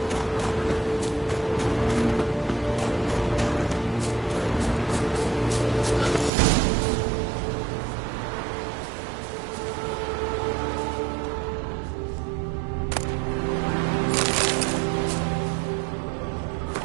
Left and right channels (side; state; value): left; drops out; at 6.3 s